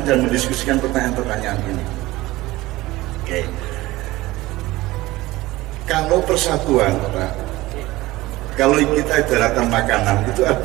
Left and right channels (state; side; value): quieter; left; 18.8 dB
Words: dan mendiskusikan pertanyaan-pertanyaan ini. Oke. Kalau persatuan, Pak, kalau kita ibaratkan makanan, itu